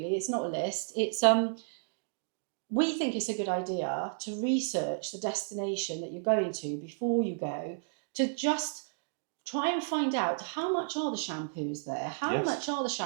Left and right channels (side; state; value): left; silent; digital silence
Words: It's not a list. It's we think it's a good idea to research the destination that you're going to before you go, to just try and find out how much are the shampoos there, how Yes. much are the